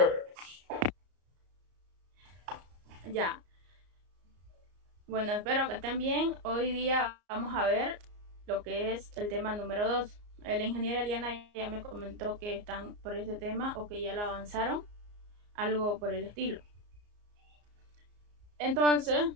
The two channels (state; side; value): late; left; 34 ms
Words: Ya. Bueno, espero que estén bien. Hoy día vamos a ver lo que es el tema número 2. La ingeniera Eliana ya me comentó que están por este tema o que ya lo avanzaron, algo por el estilo. Entonces,